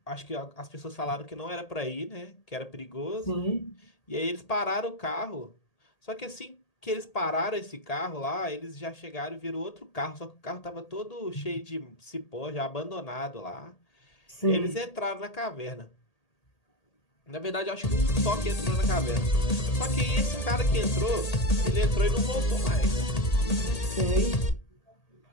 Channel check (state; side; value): late; right; 1.8 ms